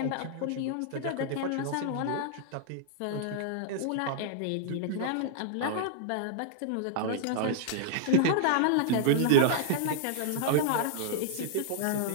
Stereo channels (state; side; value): different; both; correlation -0.01